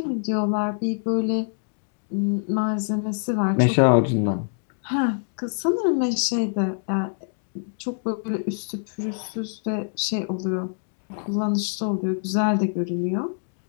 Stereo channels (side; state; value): right; silent; 62 dB below the other